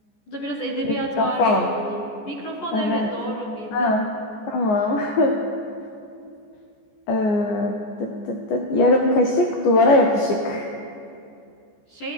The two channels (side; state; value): right; late; 14 ms